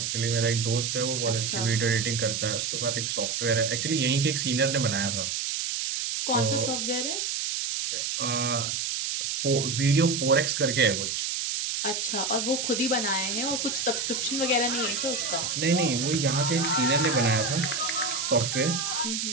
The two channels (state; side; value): noise; right; hiss, 1 dB below the sound